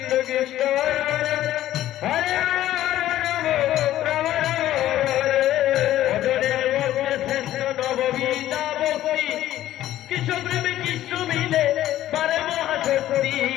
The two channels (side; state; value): right; quieter; 13.3 dB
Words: কৃষ্ণ হরে নববিদ্যা বকরি কৃষ্ণ প্রেমে কৃষ্ণ মিলে পারে মহাশক্তি